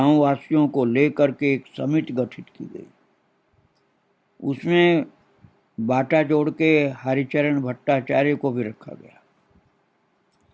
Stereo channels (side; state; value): both; identical; correlation 1.00